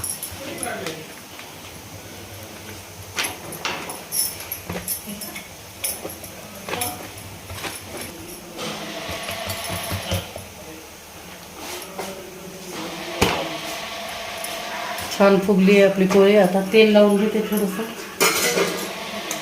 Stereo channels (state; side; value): identical; both; correlation 1.00